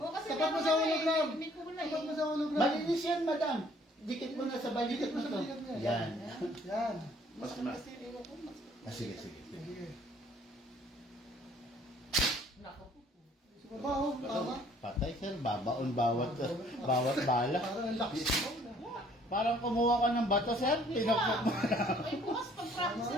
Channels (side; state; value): both; normal; correlation 0.59